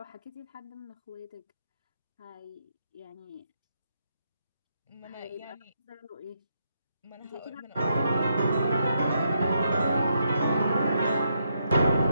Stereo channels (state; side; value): inverted; both; correlation -0.79